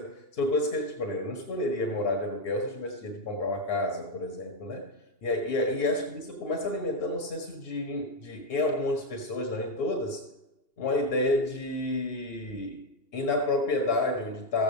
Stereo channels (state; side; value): late; right; 2.8 ms